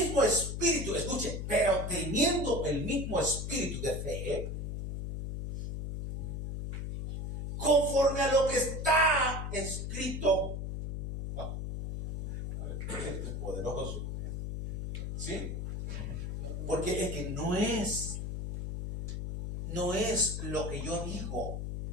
espíritu, escuche, pero teniendo el mismo espíritu de fe, conforme a lo que está escrito. Esto es poderoso. ¿Sí? Porque es que no es lo que yo digo,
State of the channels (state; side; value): noise; left; hum, 5 dB below the sound